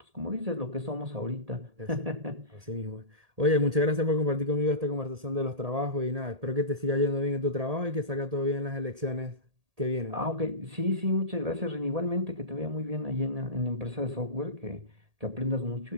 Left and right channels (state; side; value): late; left; 1.8 ms